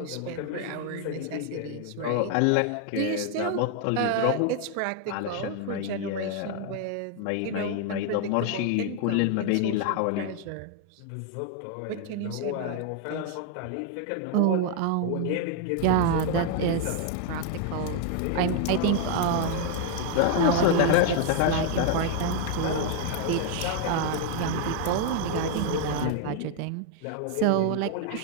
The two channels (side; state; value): both; different; correlation 0.00